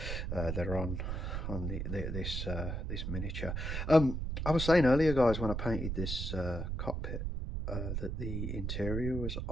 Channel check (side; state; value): right; noise; rumble, 3 dB below the sound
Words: They're on this miniature. I was saying earlier, guys, when I painted this cockpit, that the interior was